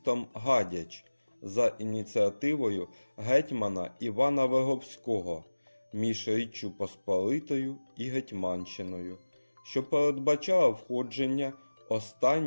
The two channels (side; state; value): both; inverted; correlation -1.00